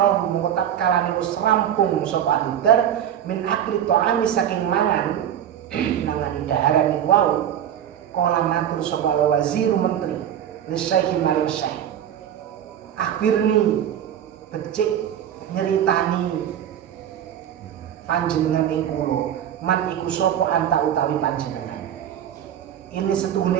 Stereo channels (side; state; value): left; quieter; 10.0 dB